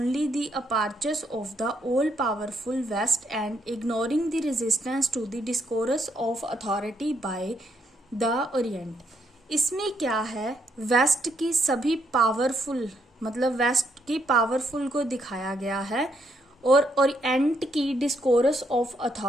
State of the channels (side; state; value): both; normal; correlation 0.74